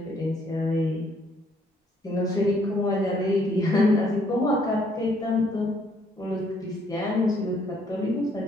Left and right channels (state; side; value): normal; both; correlation 0.67